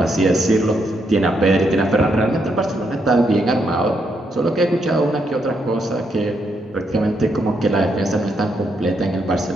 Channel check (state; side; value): normal; both; correlation 0.78